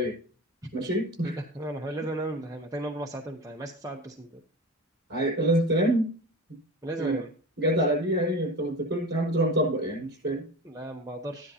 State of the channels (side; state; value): both; normal; correlation 0.31